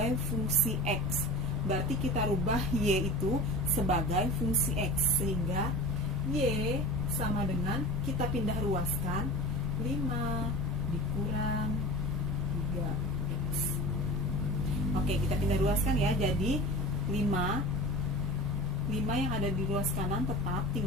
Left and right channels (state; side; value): normal; both; correlation 0.36